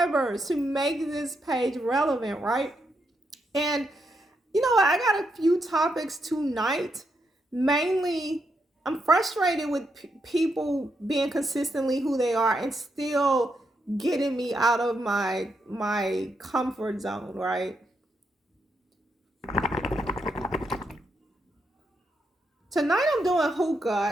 to make this page relevant, right? And you know what? I got a few topics tonight. Mainly, I'm frustrated with people being consistently who they are and still getting me out of my comfort zone, right? Tonight I'm doing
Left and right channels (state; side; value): normal; both; correlation 0.81